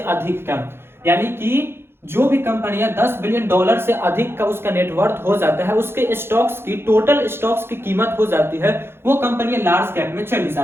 का। यानी कि जो भी कंपनियां 10 बिलियन डॉलर से अधिक का उसका नेटवर्थ हो जाता है, उसके स्टॉक्स की, टोटल स्टॉक्स की कीमत हो जाती है, वो कंपनियां लार्ज कैप में चली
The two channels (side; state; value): left; late; 0.11 ms